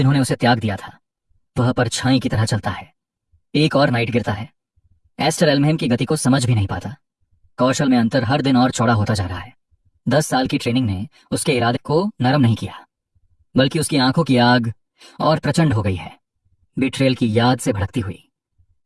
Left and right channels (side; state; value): both; identical; correlation 1.00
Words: उसे त्याग दिया था। वह परछाई की तरह चलता है। एक और नाइट गिरता है। एस्टर एल्महेम की गति को समझ भी नहीं पाता। कौशल में अंतर हर दिन और चौड़ा होता जा रहा है। 10 साल की ट्रेनिंग ने उसके इरादे को नरम नहीं किया, बल्कि उसकी आंखों की आग और प्रचंड हो गई है। बिट्रेल की याद से भड़कती हुई